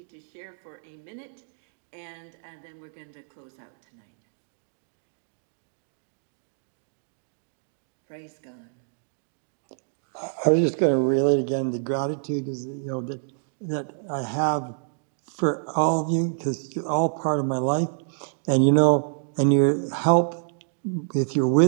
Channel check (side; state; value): left; silent; digital silence